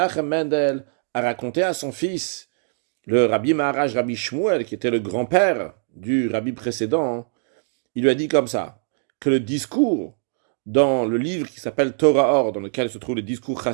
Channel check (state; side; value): silent; left; 64 dB below the other